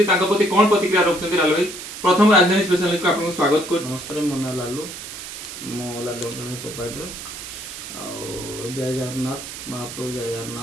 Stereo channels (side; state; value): right; noise; hiss, 10 dB below the sound